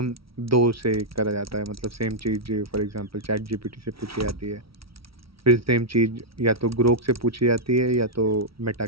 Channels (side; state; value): left; late; 0.75 ms